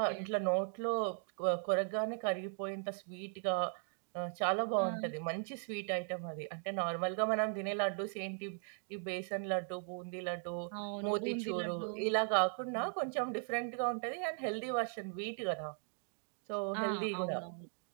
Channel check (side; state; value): left; silent; 52 dB below the other